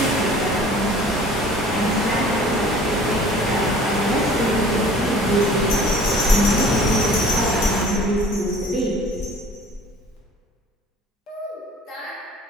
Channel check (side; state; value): both; normal; correlation 0.48